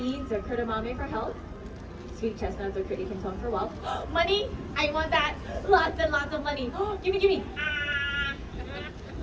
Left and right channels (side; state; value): both; identical; correlation 1.00